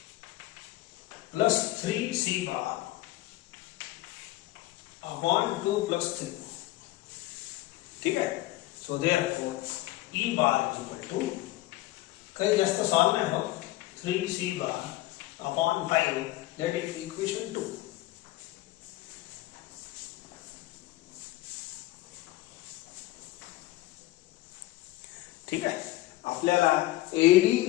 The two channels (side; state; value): right; quieter; 17.5 dB